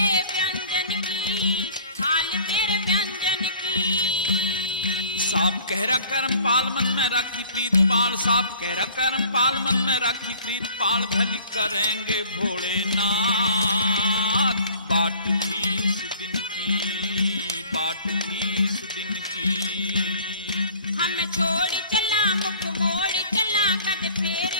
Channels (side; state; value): both; inverted; correlation -0.50